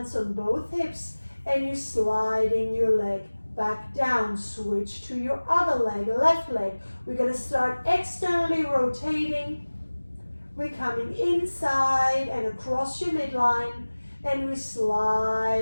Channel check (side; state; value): both; inverted; correlation -1.00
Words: on both hips, and you're sliding your leg back down. Switch to your other leg, left leg. We're going to start externally rotating. We're coming inside and across your midline, and we're